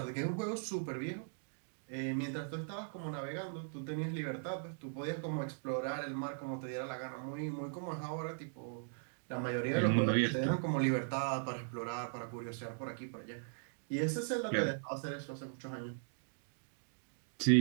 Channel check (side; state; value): left; silent; digital silence